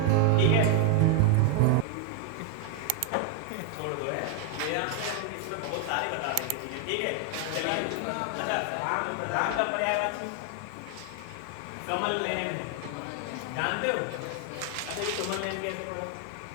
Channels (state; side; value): different; both; correlation 0.00